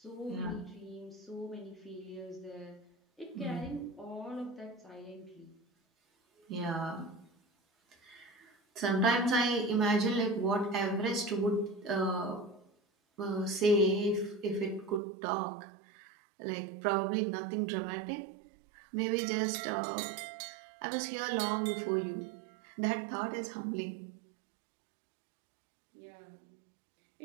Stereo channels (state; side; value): drops out; left; at 15.0 s